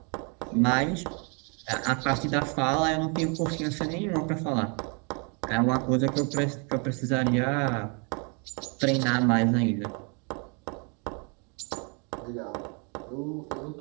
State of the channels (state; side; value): quieter; left; 35.2 dB